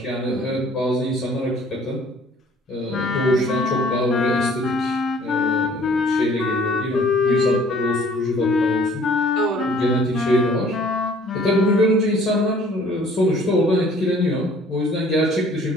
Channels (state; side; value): normal; both; correlation 0.55